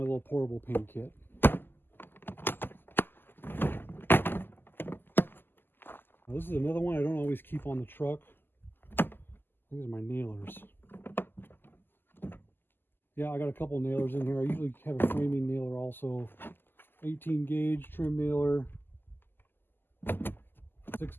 little portable paint kit. This is another one I don't always keep on the truck. These are my nailers. Yeah, I got a couple nailers in here. I usually have a framing nailer also. 18 gauge trim nailer.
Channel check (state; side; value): late; right; 0.096 ms